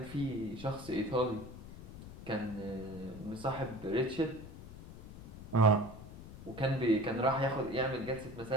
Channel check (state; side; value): noise; left; rumble, 14 dB below the sound